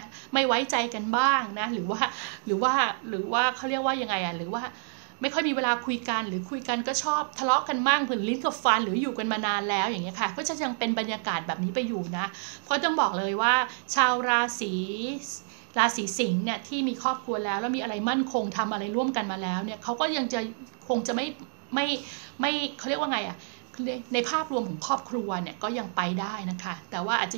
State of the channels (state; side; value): silent; left; digital silence